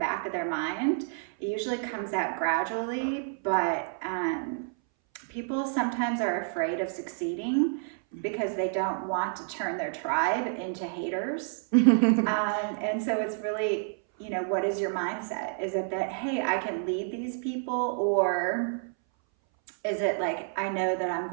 of their mind. It usually comes out gradually, but people sometimes are afraid of succeeding because they don't want to turn their tribe into haters. And so it's really, what is your mindset? Is it that, hey, I can lead these people? Or is it like, I know that I'm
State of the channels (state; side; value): silent; left; 58 dB below the other